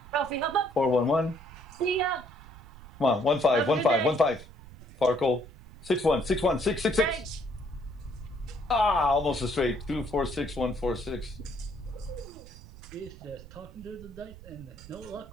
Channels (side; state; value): right; noise; rumble, 18 dB below the sound